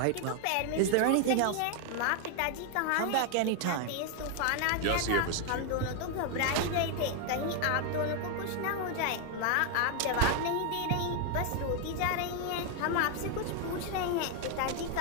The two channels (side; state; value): both; different; correlation 0.01